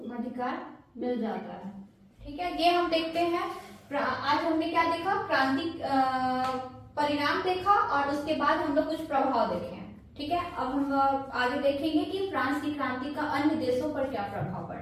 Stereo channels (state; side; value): identical; both; correlation 1.00